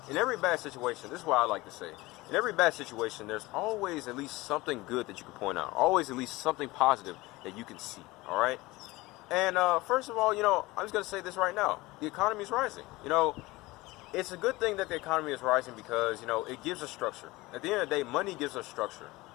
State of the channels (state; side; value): quieter; right; 20.7 dB